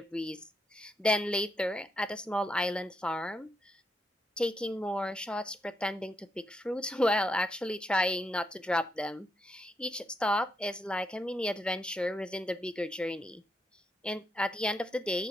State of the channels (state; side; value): normal; both; correlation 0.80